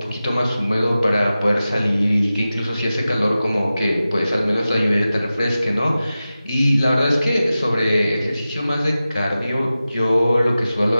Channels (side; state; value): both; inverted; correlation -0.94